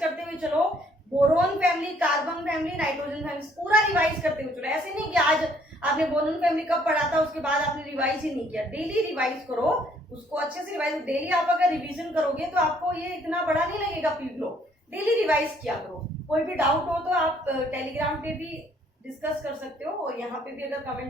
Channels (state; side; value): normal; both; correlation 0.64